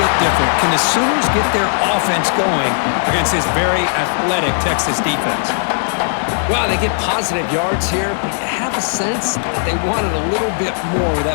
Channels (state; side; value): silent; right; digital silence